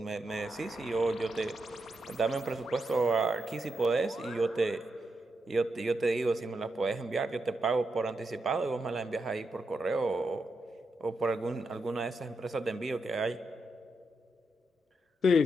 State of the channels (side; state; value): both; normal; correlation 0.84